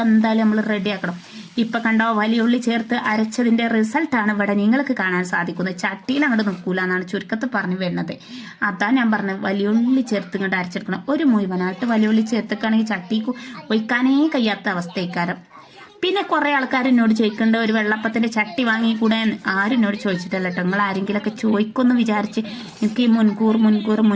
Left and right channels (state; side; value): identical; both; correlation 1.00